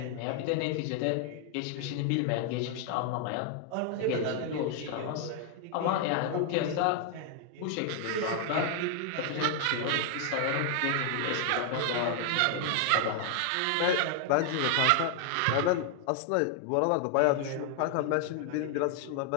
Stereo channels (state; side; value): different; both; correlation 0.00